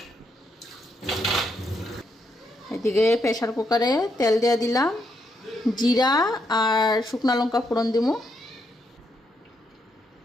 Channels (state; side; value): normal; both; correlation 0.78